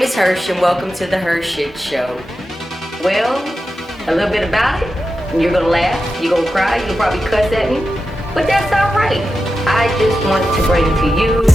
is Hersh and welcome to the HERshyt Show. Well, a little bit about it. You're gonna laugh, you're gonna cry, you'll probably cuss at me, but that's alright. I just want to bring to you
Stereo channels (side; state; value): both; normal; correlation 0.91